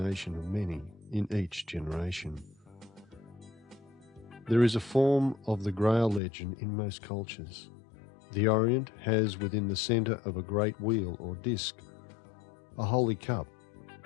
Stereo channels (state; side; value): drops out; right; at 6.2 s